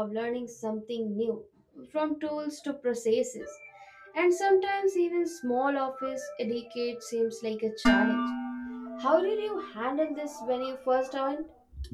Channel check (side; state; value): both; identical; correlation 1.00